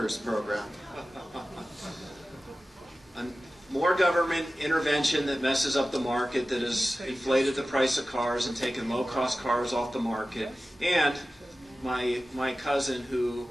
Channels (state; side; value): normal; both; correlation 0.95